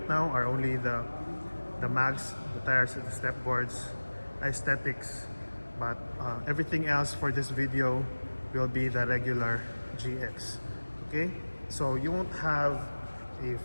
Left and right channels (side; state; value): both; inverted; correlation -1.00